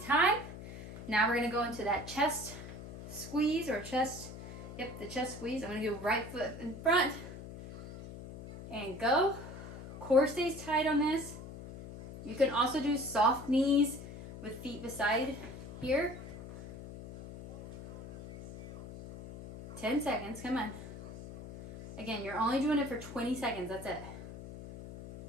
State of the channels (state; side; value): noise; left; hum, 12 dB below the sound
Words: time. Now we're gonna go into that chest squeeze or chest, the chest squeeze. I'm gonna do right foot in front and go. Core stays tight on this. You can also do soft knees with feet beside here. 10 seconds, come on. Again, you're only doing it for 20 seconds, that's it.